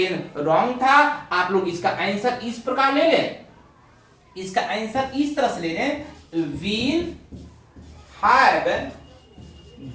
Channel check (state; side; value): identical; both; correlation 1.00